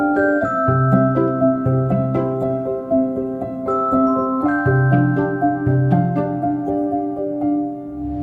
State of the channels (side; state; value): both; identical; correlation 1.00